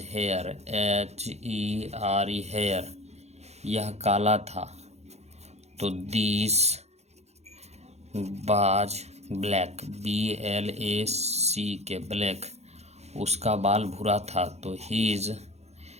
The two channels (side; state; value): left; late; 0.31 ms